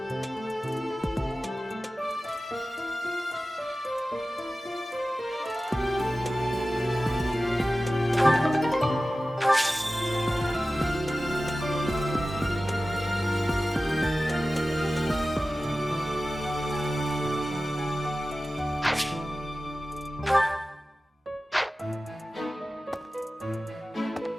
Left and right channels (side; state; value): both; normal; correlation 0.95